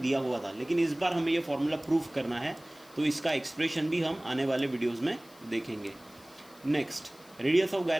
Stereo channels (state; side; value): noise; left; hiss, 25 dB below the sound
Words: हुआ था, लेकिन इस बार हमें ये फार्मूला प्रूफ करना है, तो इसका एक्सप्रेशन भी हम आने वाले वीडियोस में देखेंगे। Next, radius of